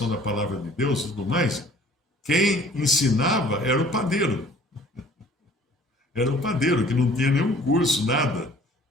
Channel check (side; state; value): both; normal; correlation 0.53